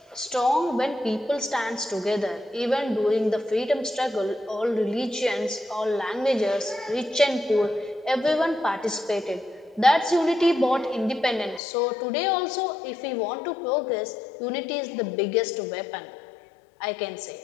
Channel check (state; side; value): drops out; right; at 11.6 s